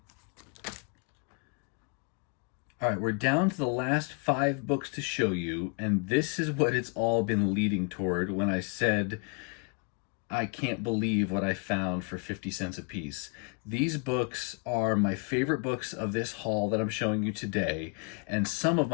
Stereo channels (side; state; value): right; quieter; 36.2 dB